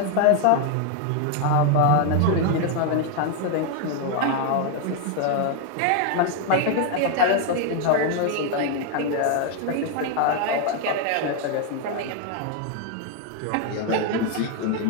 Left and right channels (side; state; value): both; different; correlation 0.01